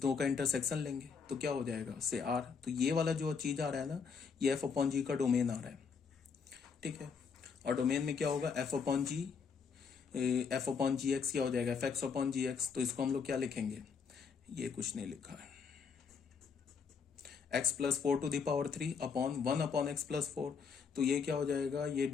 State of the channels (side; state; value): right; quieter; 5.8 dB